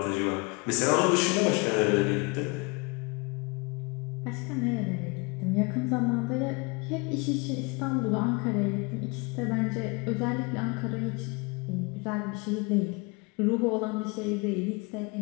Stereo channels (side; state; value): right; quieter; 28.8 dB